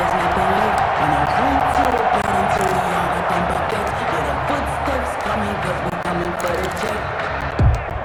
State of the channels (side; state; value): both; identical; correlation 1.00